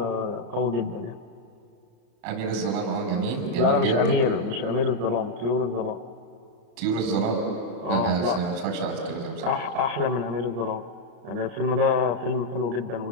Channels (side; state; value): left; late; 34 ms